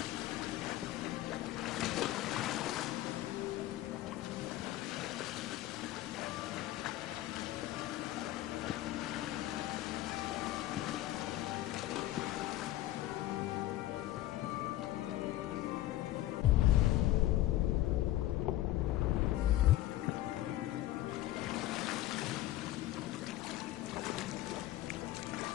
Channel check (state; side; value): quieter; right; 15.1 dB